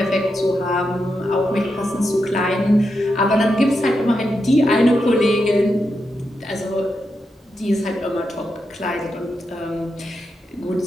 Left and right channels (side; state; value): both; normal; correlation 0.86